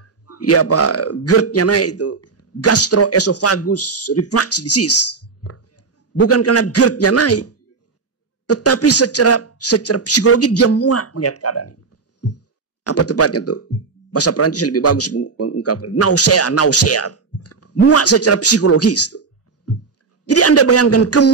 Ya apa? GERD-nya naik itu. Gastroesophagus reflux disease. Bukan karena GERD-nya naik. Tetapi secara psikologi dia muak melihat keadaan ini. Apa tepatnya tuh? Bahasa Perancis lebih bagus mengungkapkan. Nausea. Muak secara psikologis tuh. Jadi Anda bayangkan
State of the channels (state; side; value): quieter; left; 4.7 dB